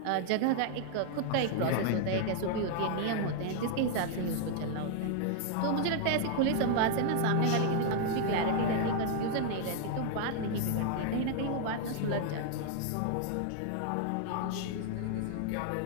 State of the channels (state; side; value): different; both; correlation 0.00